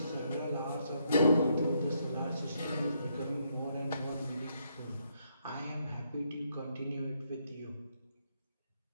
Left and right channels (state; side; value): inverted; both; correlation -0.75